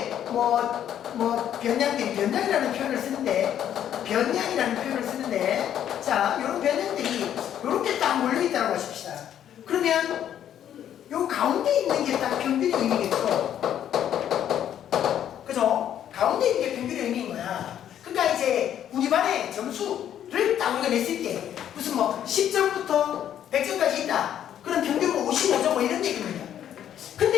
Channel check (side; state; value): right; quieter; 10.3 dB